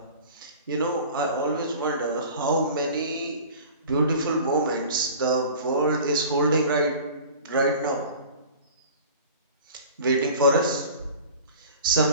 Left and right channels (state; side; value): inverted; both; correlation -0.41